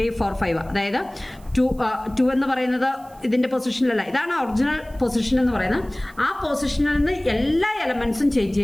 4 5. അതായത് 2 എന്ന് പറയുന്നത് ഇതിന്റെ പൊസിഷനിലല്ല, ഇതാണ് ഒറിജിനൽ പൊസിഷൻ എന്ന് പറയുന്നത്. ആ പൊസിഷനിൽ നിന്ന് എല്ലാ എലമെന്റ്സും ചേഞ്ച്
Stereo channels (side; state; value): right; noise; hiss, 27 dB below the sound